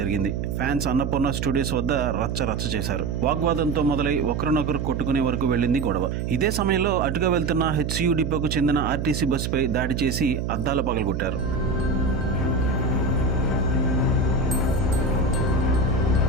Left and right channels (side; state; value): right; noise; hum, 2 dB below the sound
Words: ఫ్యాన్స్ అన్నపూర్ణ స్టూడియోస్ వద్ద రచ్చ చేశారు. వాగ్వాదంతో మొదలై ఒకరినొకరు కొట్టుకునే వరకు వెళ్ళింది గొడవ. ఇదే సమయంలో అటుగా వెళ్తున్న హెచ్సియు డిపోకు చెందిన ఆర్టీసీ బస్సుపై దాడి చేసి అద్దాలు పగలగొట్టారు.